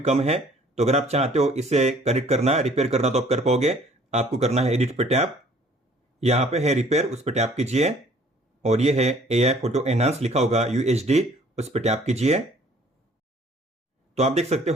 है। तो अगर आप चाहते हो इसे करेक्ट करना, रिपेयर करना तो आप कर पाओगे। आपको करना है एडिट पे टैप। यहाँ पे है रिपेयर, उस पर टैप कीजिए और ये है AI फोटो एनहांस लिखा होगा UHD, उस पर टैप कीजिए। तो आप देख सकते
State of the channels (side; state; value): both; normal; correlation 0.56